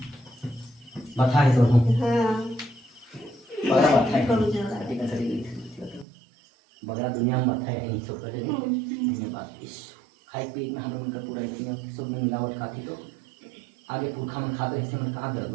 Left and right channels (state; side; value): drops out; left; at 6.1 s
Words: बता है तो हम बड़ा बात है बड़ा दुनिया में बात है नहीं सब कर धन्यवाद यीशु। खाई पी में हम उनका पूरा इतना सब में मिलावट खाती तो आगे पुरखा में खाते हिस्से में कहाँ दर्द